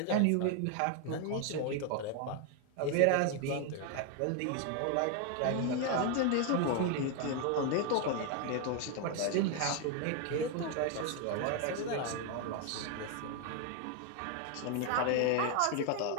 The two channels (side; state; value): both; different; correlation 0.01